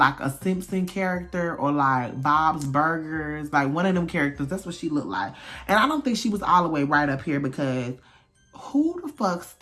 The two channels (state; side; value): identical; both; correlation 1.00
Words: Simpson character, or like Bob's Burgers, like one of them characters. That's what she looked like. And I don't think she was all the way right up here, because who the fuck